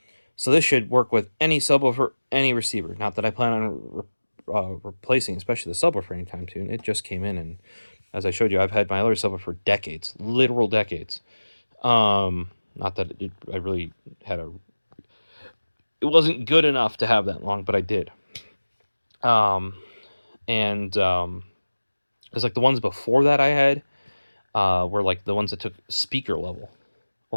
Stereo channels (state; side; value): inverted; both; correlation -1.00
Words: So this should work with any subwoofer, any receiver. Not that I plan on replacing, especially the subwoofer anytime soon. It just came in, and as I showed you, I've had my other subwoofer for decades, literal decades. Not that I really had it wasn't good enough to have that long, but I did. It's like the ones before that I had were like the ones that took speaker level,